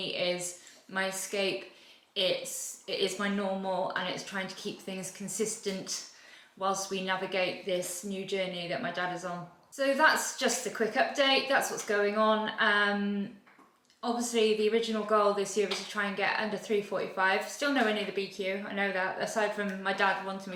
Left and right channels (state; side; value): identical; both; correlation 1.00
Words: is my escape. It is my normal, and it's trying to keep things consistent whilst we navigate this new journey that my dad is on. So that's just a quick update. That's what's going on. Obviously the original goal this year was to try and get under 3:45. Still nowhere near the BQ, I know that. Aside from my dad wanting